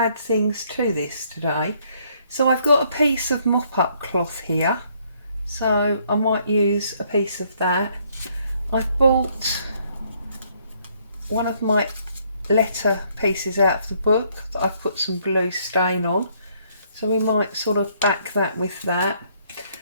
things to this today. So I've got a piece of mop-up cloth here, so I might use a piece of that. I've bought one of my letter pieces out of the book that I've put some blue stain on, so we might sort of back that with that.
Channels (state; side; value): inverted; both; correlation -0.67